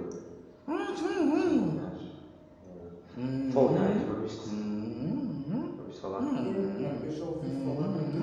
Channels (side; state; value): both; identical; correlation 1.00